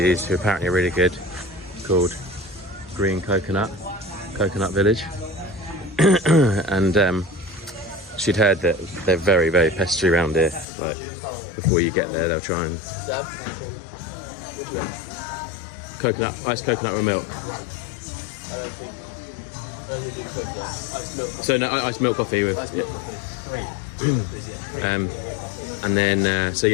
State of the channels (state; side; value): drops out; right; at 10.7 s